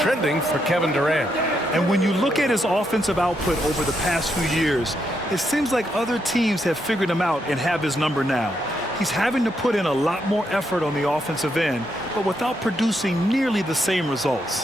for Kevin Durant. And when you look at his offensive output over the past few years, it seems like other teams have figured him out and have his number now. He's having to put in a lot more effort on the offensive end, but without producing nearly the same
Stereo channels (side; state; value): both; normal; correlation 0.79